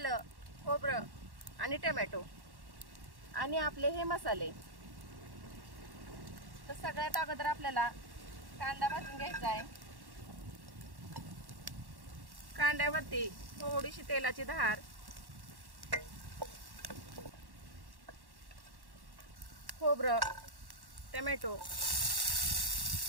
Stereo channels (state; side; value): late; left; 1.1 ms